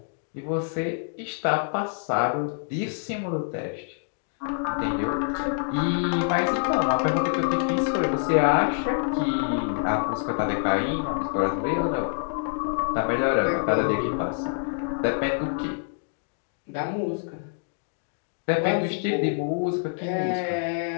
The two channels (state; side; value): silent; right; digital silence